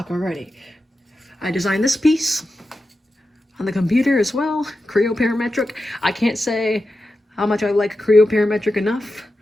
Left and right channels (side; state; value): both; normal; correlation 0.91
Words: already. I designed this piece on the computer as well, Creo Parametric. I can't say how much I like Creo Parametric enough.